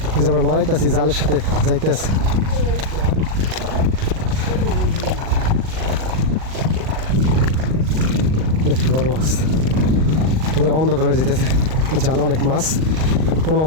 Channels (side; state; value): left; late; 38 ms